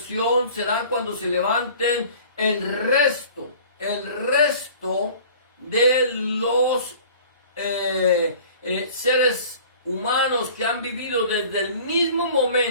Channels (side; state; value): both; inverted; correlation -0.46